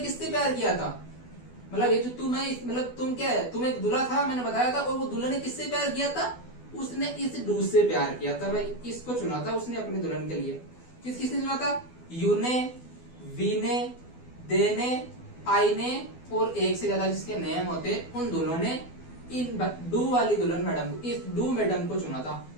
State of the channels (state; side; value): late; right; 12 ms